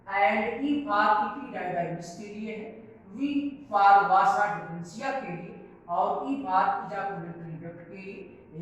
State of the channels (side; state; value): both; identical; correlation 1.00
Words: एंड ई फॉर इपीडाइडाइमिस के लिए है, वी फॉर वासा डिफरेंशिया के लिए, और ई फॉर इजाकुलेटरी डक्ट के लिए,